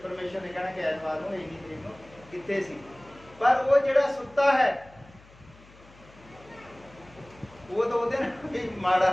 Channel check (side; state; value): left; noise; hum, 24 dB below the sound